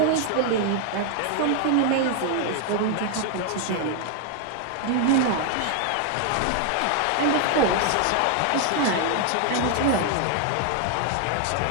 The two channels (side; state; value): both; different; correlation 0.00